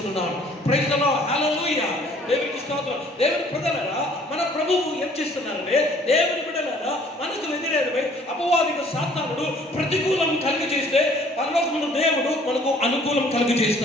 ప్రైజ్ ది లార్డ్, హల్లెలూయా. దేవునికి స్తోత్రం. దేవుని ప్రజలారా, మన ప్రభువు ఏం చేస్తున్నారంటే, దేవుని బిడ్డలారా మనకు వ్యతిరేకమై అపవాదిక సాతానుడు ప్రతికూలం కలిగి చేస్తే పరలోకమున దేవుడు మనకు అనుకూలం కలిగి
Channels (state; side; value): normal; both; correlation 0.57